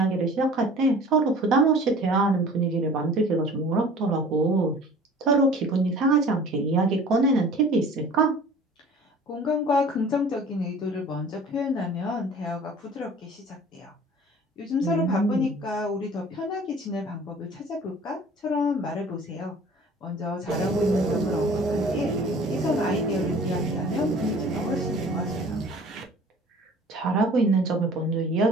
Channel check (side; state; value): both; normal; correlation 0.46